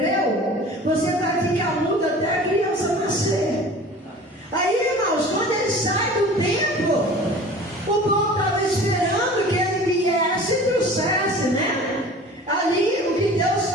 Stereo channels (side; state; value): both; normal; correlation 0.42